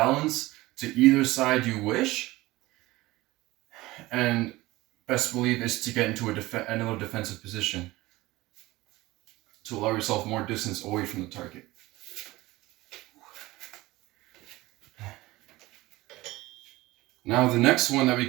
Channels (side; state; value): left; quieter; 19.1 dB